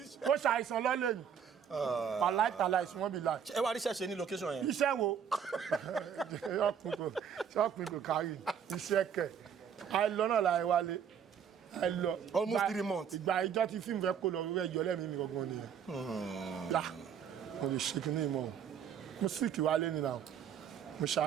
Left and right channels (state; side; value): quieter; left; 7.9 dB